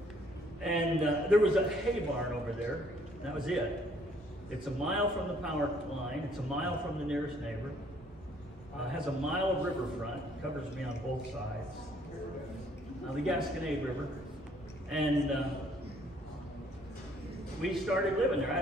And there was a hay barn over there. And that was it. It's a mile from the power line. It's a mile from the nearest neighbor. Has a mile of riverfront. Covers me on both sides. The Gasconade River. And we started living there. I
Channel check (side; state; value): both; normal; correlation 0.63